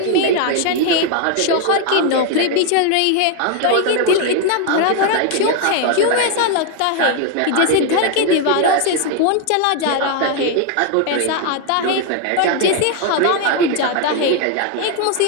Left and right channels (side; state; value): both; different; correlation 0.00